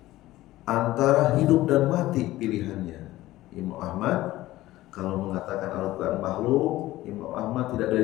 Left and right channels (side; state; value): right; quieter; 16.5 dB